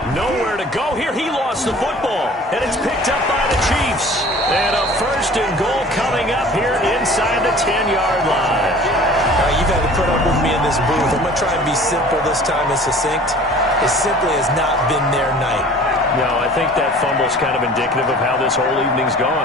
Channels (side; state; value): both; normal; correlation 0.46